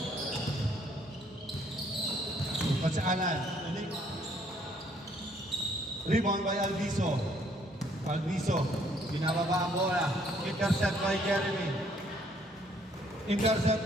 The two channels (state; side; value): normal; both; correlation 0.65